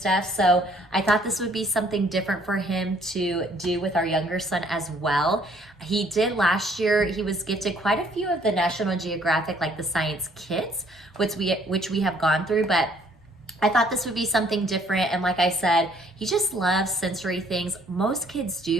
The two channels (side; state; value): both; normal; correlation 0.62